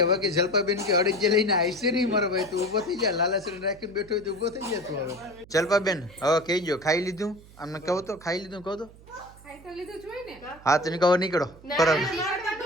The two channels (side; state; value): right; noise; hum, 22 dB below the sound